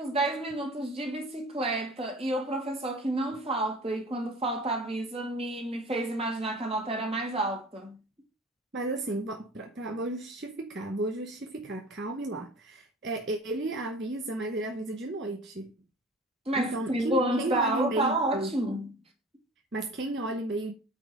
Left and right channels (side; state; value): both; normal; correlation 0.42